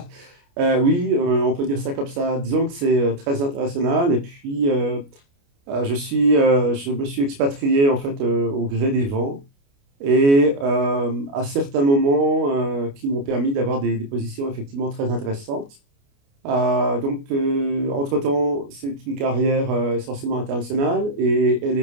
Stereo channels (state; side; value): late; left; 29 ms